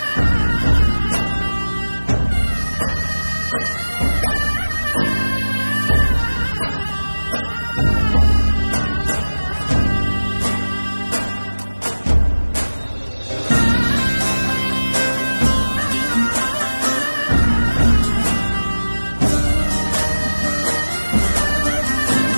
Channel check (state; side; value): inverted; both; correlation -1.00